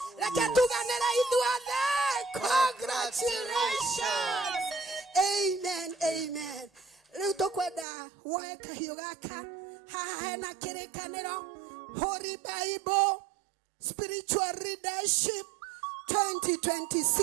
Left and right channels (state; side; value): drops out; left; at 7.9 s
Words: Congratulations. Amen. Amen. Riu tukwenda woe kahio gaka haha hena kirikaniro Holy Bible Spiritual Leadership